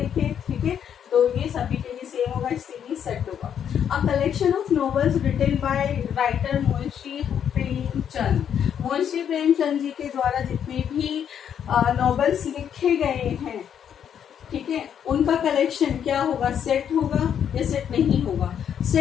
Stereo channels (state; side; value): quieter; right; 8.7 dB